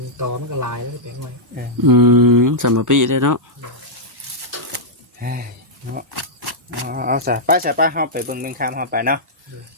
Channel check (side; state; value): both; normal; correlation -0.09